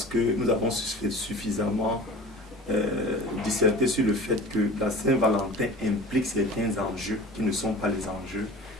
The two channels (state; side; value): normal; both; correlation 0.39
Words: que nous avons suffisamment disserté sur le fait que la Saint-Valentin implique certains enjeux qui ne sont pas les enjeux,